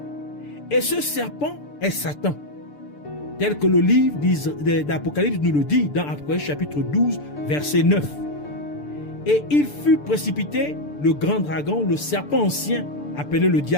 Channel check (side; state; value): right; late; 6.8 ms